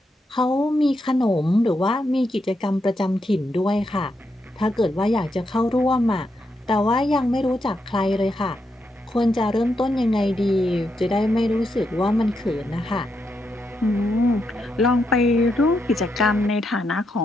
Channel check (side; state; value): both; normal; correlation 0.82